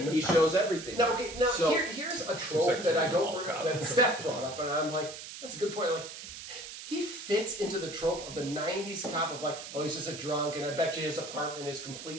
fear. He shows everything. Now, here's a trope that I don't that Steph brought up, and I'm like, that's a good point. Like, he fits into the trope of the '90s cop of like, oh, he's just a drunk, and I bet you his apartment is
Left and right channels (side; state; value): right; noise; hiss, 11 dB below the sound